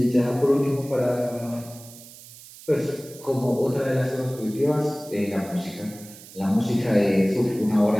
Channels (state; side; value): noise; right; hiss, 18 dB below the sound